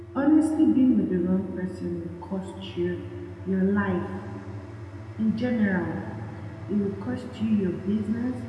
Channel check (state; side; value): identical; both; correlation 1.00